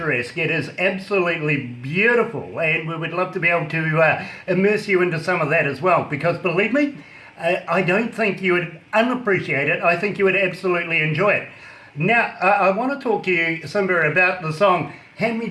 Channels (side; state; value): both; identical; correlation 1.00